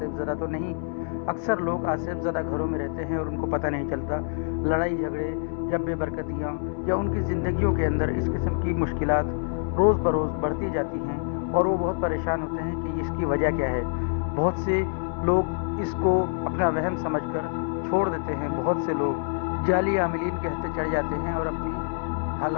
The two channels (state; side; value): silent; right; 61 dB below the other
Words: ज़दा तो नहीं। अक्सर लोग आसिफ ज़दा घरों में रहते हैं और उनको पता नहीं चलता। लड़ाई झगड़े या बेबरकतियाँ या उनकी ज़िंदगियों के अंदर इस किस्म की मुश्किलात रोज़ बरोज़ बढ़ती जाती हैं और वो बहुत परेशान होते हैं कि इसकी वजह क्या है। बहुत से लोग इसको अपना वहम समझकर छोड़ देते हैं। बहुत से लोग जाली आमिलीन के हत्थे चढ़ जाते हैं और अपनी